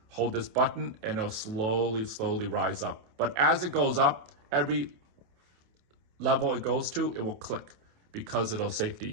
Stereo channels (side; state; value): left; late; 28 ms